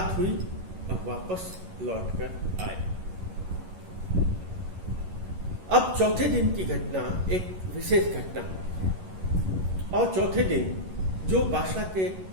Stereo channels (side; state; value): left; late; 11 ms